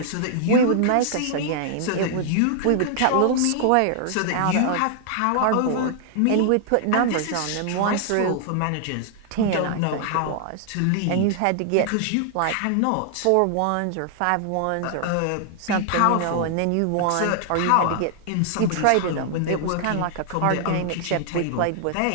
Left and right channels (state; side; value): different; both; correlation 0.00